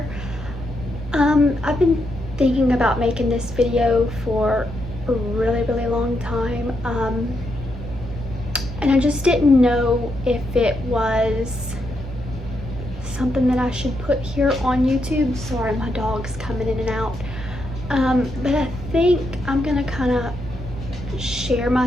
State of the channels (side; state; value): both; normal; correlation 0.81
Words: I've been thinking about making this video for a really long time. And I just didn't know if it was something that I should put here on YouTube. Sorry, my dog's coming in and out. But I think I'm gonna kind of share